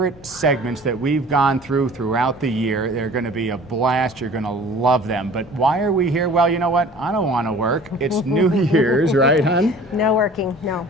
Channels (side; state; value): both; normal; correlation 0.46